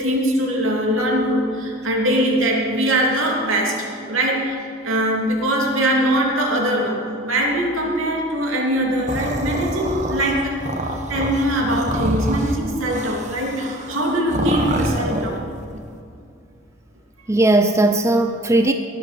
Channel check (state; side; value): normal; both; correlation 0.40